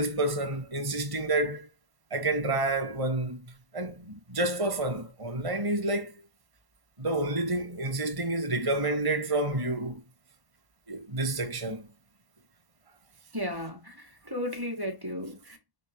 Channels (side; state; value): left; late; 1.1 ms